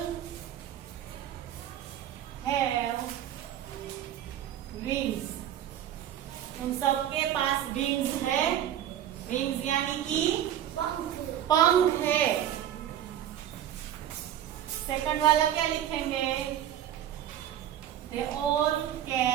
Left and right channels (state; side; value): quieter; left; 11.1 dB